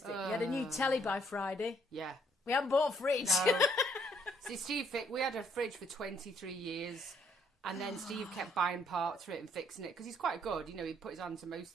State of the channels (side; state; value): both; normal; correlation 0.67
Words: We had a new telly by Friday. Yeah. We haven't bought a fridge. No. See, Steve, we had a fridge for 23 years, and then Steve kept buying parts for it and fixing it, because he's quite good, you know, he put his hand to most